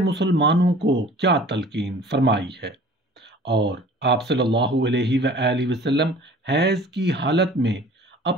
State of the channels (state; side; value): normal; both; correlation 0.47